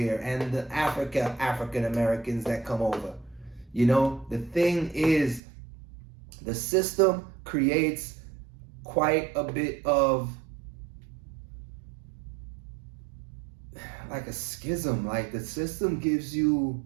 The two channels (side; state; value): left; drops out; at 5.4 s